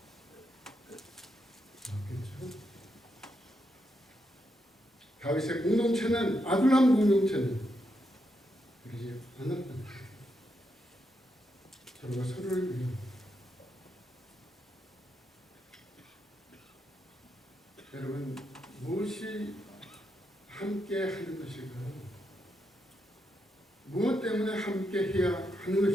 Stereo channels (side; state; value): both; normal; correlation 0.82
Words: 없겠죠. 다윗의 공동체는, 아둘람 공동체는 그러지 않았다. 서로가 서로를 위해. 여러분, 무엇이 함께 하는 것일까요? 무엇 때문에 함께 해야 하는